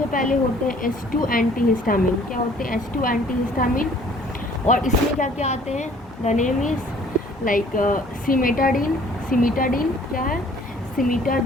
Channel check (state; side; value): normal; both; correlation 0.55